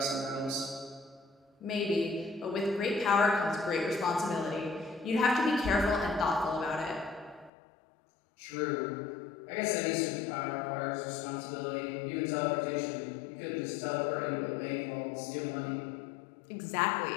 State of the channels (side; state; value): right; drops out; at 7.5 s